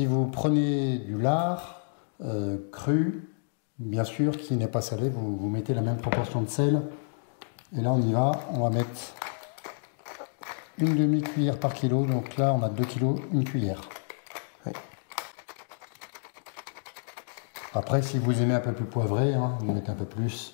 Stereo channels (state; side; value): silent; right; digital silence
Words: vous prenez du lard cru, bien sûr, qui n'est pas salé, vous mettez la même proportion de sel. Et là, on y va. On va mettre une demi-cuillère par kilo. Donc là, on a 2 kg, une cuillère. Ouais. Après, si vous aimez un peu plus poivré, hein, vous mettez un peu